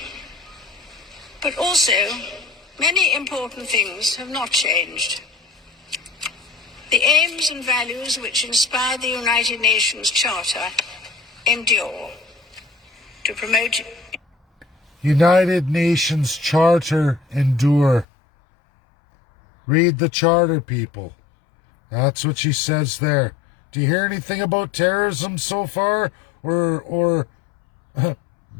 But also, many important things have not changed. The aims and values which inspire the United Nations Charter endure. To promote United Nations Charter endure. Read the charter, people. That's what she says there. Do you hear anything about terrorism so far? Or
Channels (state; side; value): drops out; right; at 18.1 s